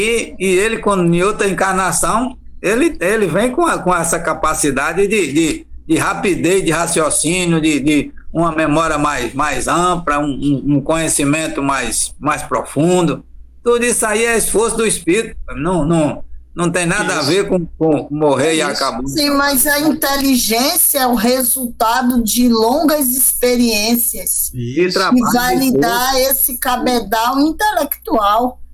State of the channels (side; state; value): both; identical; correlation 1.00